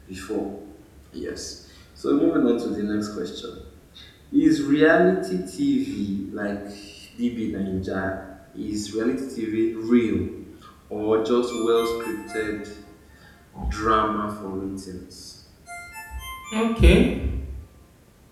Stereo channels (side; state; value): both; identical; correlation 1.00